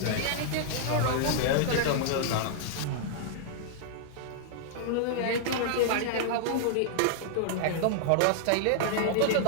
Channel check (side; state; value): both; different; correlation -0.01